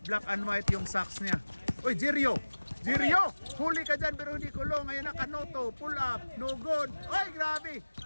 Black and white yung socks niya. Oy, Jerio, huli ka dyan pero hindi kulong. Ayan na, Canoto, pull up, no good. Oy, grabe,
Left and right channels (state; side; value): inverted; both; correlation -1.00